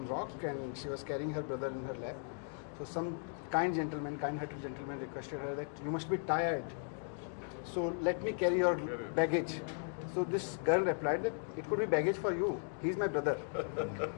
rock and she was carrying her brother in her lap. So some kind-hearted gentleman requested her that you must be tired. So let me carry your baggage. So this girl replied that it could be baggage for you. He's my brother.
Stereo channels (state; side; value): silent; right; 53 dB below the other